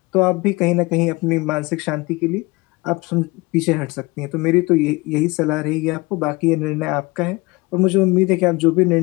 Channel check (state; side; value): quieter; right; 23.4 dB